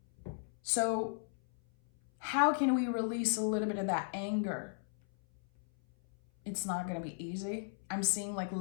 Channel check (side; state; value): right; silent; 54 dB below the other